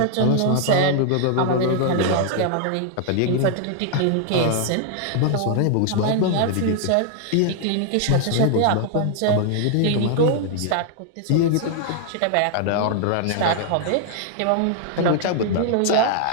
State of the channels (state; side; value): different; both; correlation 0.00